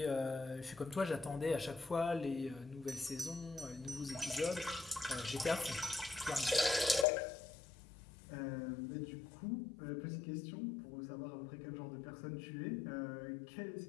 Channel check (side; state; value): right; drops out; at 7.1 s